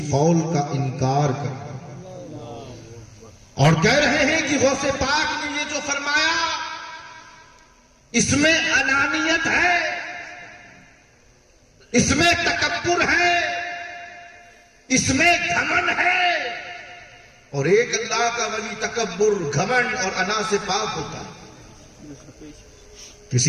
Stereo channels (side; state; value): both; identical; correlation 1.00